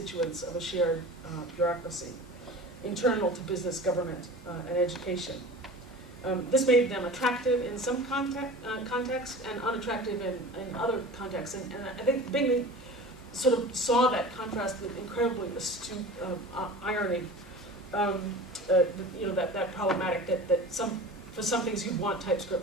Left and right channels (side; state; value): both; normal; correlation 0.37